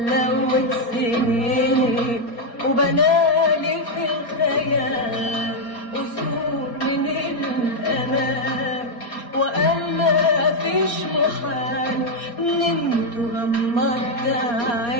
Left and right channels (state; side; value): late; right; 4.3 ms